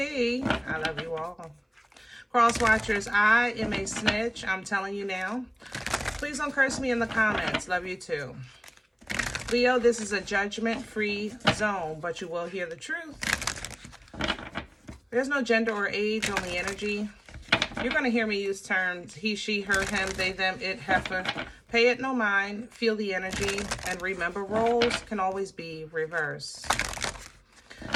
I love you all. Cross watchers, I am a snitch. I'm telling you now. Please don't curse me in the comments. Love you too. Leo, this is a judgment-free zone, but you will hear the truth. There's no gender or age, only energy. You're going to hear me use terms he, she, her, him, they, them, it, heifer. Pay it no mind, feel the energy, and remember roles can always be reversed.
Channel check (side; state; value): both; identical; correlation 1.00